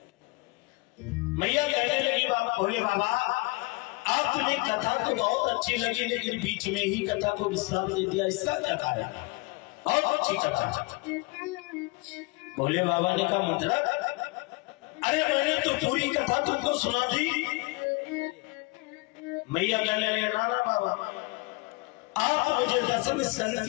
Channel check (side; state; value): right; quieter; 25.3 dB